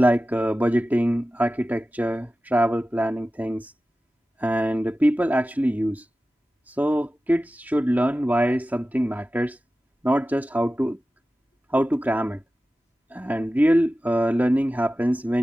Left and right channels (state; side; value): normal; both; correlation 0.95